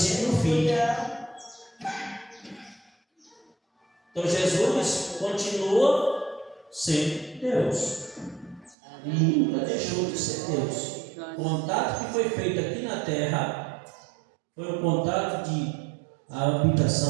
e o fim. Então Jesus continua sendo Deus, nunca deixou de ser Deus. O contato que foi feito aqui na terra foi um contato de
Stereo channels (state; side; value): drops out; left; at 8.8 s